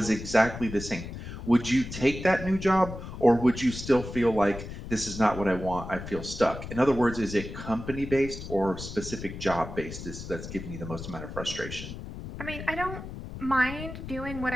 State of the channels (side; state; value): left; noise; rumble, 10 dB below the sound